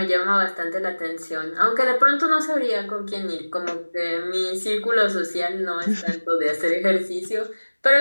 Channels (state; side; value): inverted; both; correlation -1.00